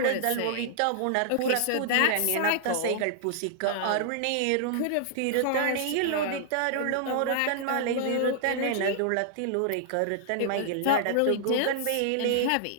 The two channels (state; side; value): different; both; correlation -0.01